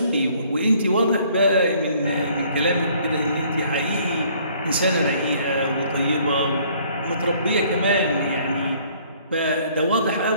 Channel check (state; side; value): inverted; both; correlation -0.60